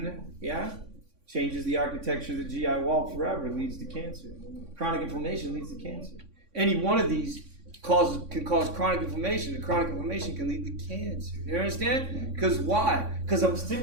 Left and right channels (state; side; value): late; left; 3.6 ms